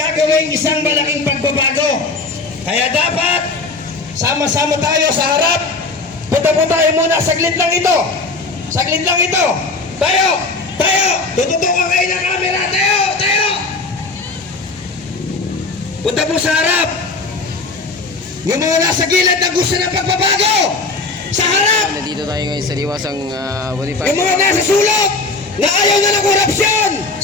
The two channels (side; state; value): right; quieter; 3.6 dB